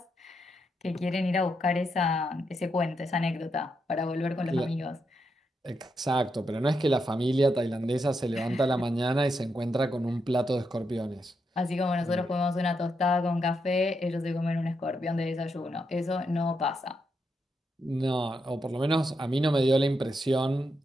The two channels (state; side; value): normal; both; correlation 0.82